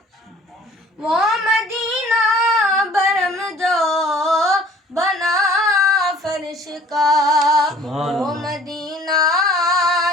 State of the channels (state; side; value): normal; both; correlation 0.52